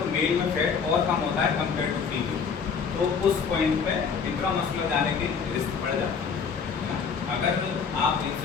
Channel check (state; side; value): quieter; right; 6.0 dB